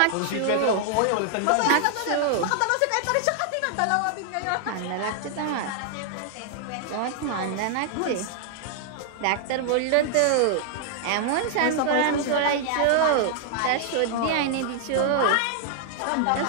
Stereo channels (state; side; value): different; both; correlation -0.01